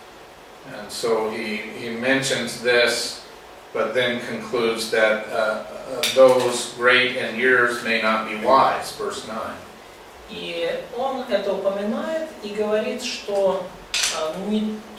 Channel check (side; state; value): both; identical; correlation 1.00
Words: And so he mentions this, but then concludes that those great in years may not be wise, verse 9. И он это упоминает и говорит, что не